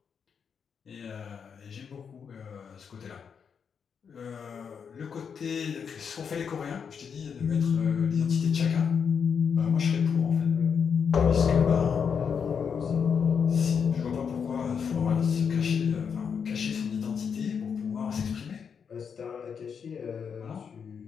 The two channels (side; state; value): right; quieter; 6.7 dB